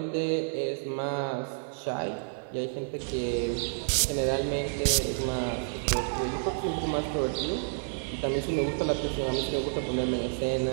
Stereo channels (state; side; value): silent; left; 58 dB below the other